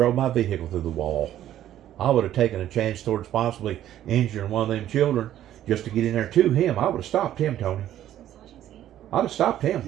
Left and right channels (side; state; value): left; quieter; 12.0 dB